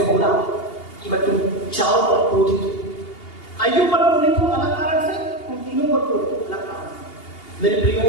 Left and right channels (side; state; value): right; late; 2.8 ms